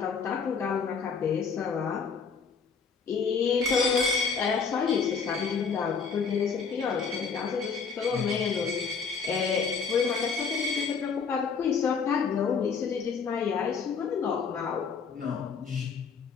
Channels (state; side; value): quieter; right; 5.6 dB